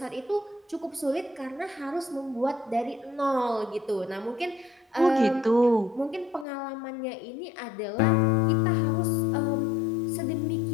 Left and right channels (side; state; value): right; drops out; at 6.5 s